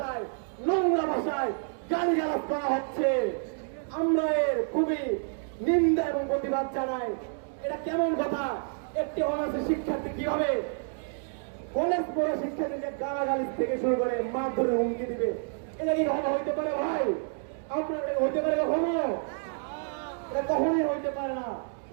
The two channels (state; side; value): silent; left; 59 dB below the other